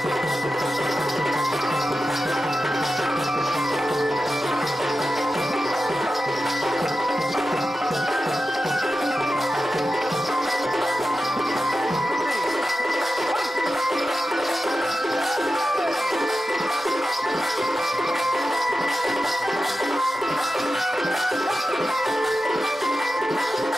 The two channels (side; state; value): both; normal; correlation 0.91